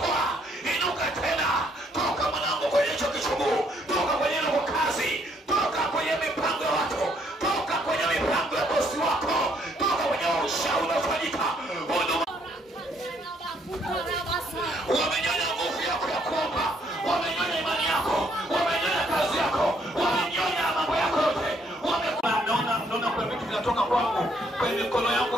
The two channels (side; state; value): both; normal; correlation 0.68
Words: Inuka tena. Toka mwanangu kwenye hicho kichungu. Toka kwenye ile kazi. Toka kwenye mipango ya watu. Toka kwenye mipango ya bosi wako. Toka kwenye ushauri unaofanyika. Wamenyonya nguvu yako ya kuomba. Wamenyonya imani yako. Wamenyonya kazi yako. Wamenyonya mambo yako yote. Naona kuna vitu vinatoka kwangu kwenye mikono yangu